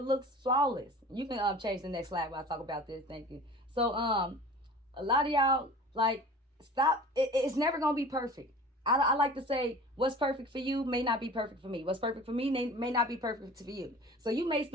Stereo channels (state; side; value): normal; both; correlation 0.41